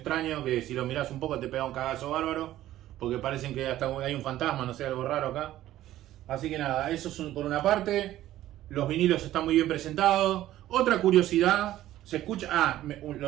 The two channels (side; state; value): left; quieter; 13.9 dB